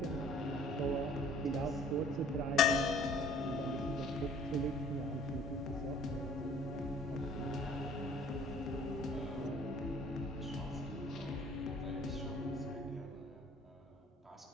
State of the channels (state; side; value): normal; both; correlation 0.54